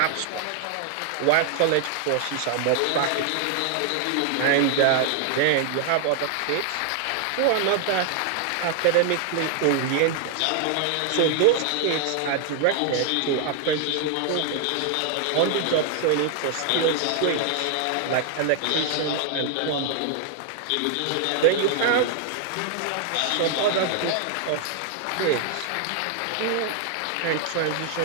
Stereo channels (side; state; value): both; different; correlation 0.00